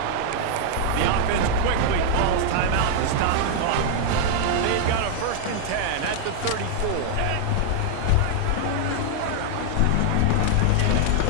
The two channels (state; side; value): different; both; correlation 0.00